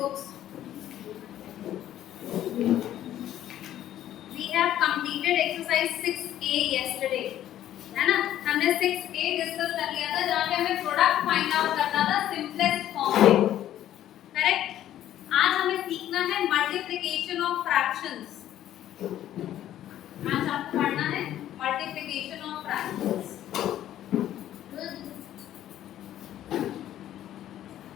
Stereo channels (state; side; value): quieter; right; 12.1 dB